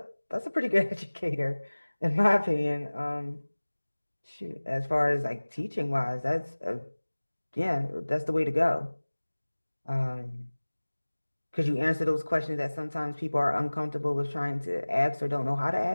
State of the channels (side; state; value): both; inverted; correlation -1.00